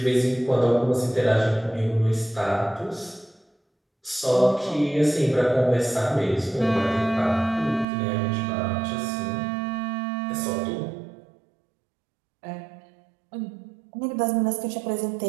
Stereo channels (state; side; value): drops out; left; at 7.9 s